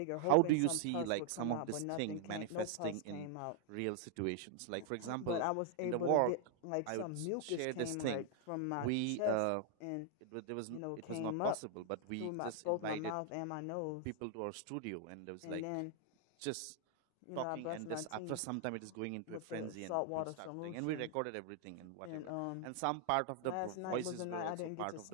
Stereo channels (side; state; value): both; different; correlation 0.00